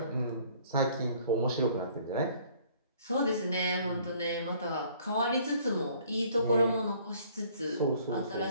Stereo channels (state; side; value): inverted; both; correlation -0.58